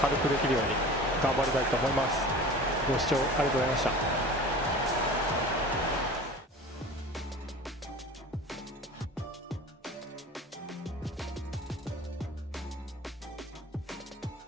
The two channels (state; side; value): normal; both; correlation 0.39